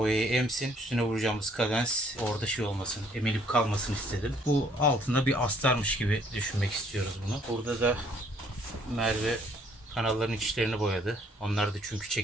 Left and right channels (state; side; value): normal; both; correlation 0.63